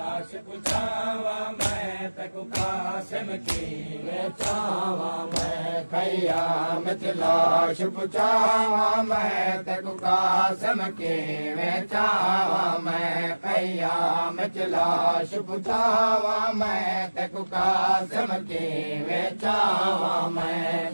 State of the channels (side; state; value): both; inverted; correlation -1.00